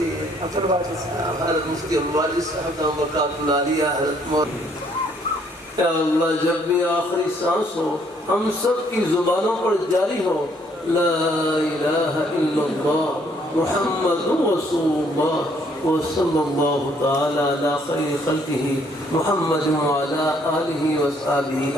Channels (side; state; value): both; normal; correlation 0.66